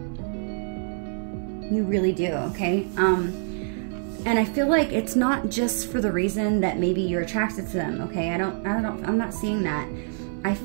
You really do, okay? And I feel like it's not just for the reason that maybe you're attracted to them, okay? I'm not seeing that. I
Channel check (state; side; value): silent; left; 61 dB below the other